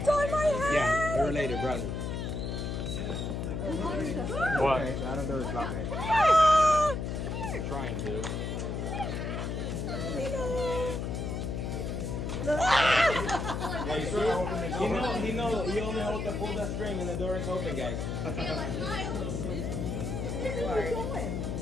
on my head. Yeah, they're related, brothers. What? Okay, I don't know it's not right. Ah! I'm trying to. Yeah, you see? He only holds to pull that string and the door is open, guys.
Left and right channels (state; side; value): noise; left; hum, 3 dB below the sound